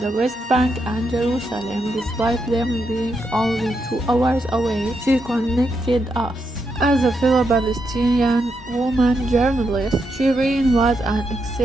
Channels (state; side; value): normal; both; correlation 0.82